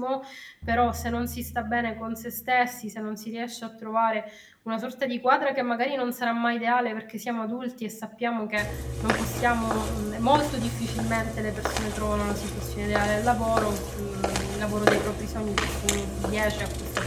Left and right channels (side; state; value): both; identical; correlation 1.00